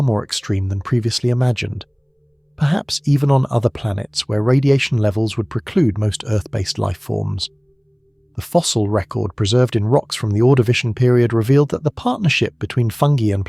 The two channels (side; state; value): both; identical; correlation 1.00